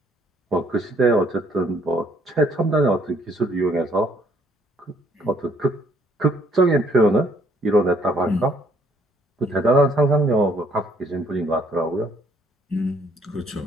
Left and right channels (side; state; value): both; normal; correlation 0.65